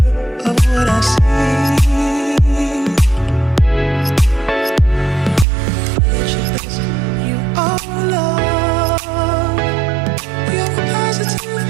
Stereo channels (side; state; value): left; drops out; at 5.5 s